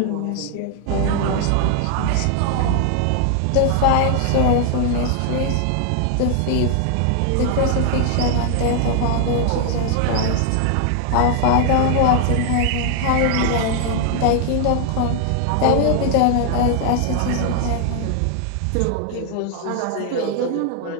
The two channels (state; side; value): different; both; correlation 0.00